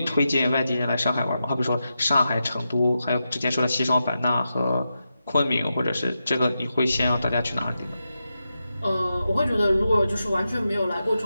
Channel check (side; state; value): both; inverted; correlation -0.89